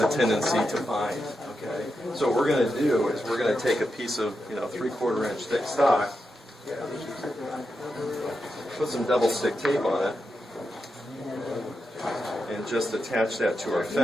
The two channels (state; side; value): normal; both; correlation 0.87